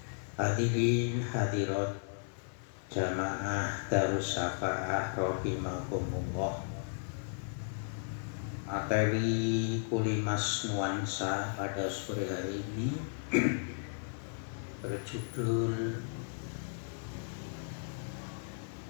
Hadirin hadirat jamaah Darus Syafaah rahimakumullah. Materi Kulimas Nuansa pada sore hari ini berjudul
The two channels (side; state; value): right; silent; 55 dB below the other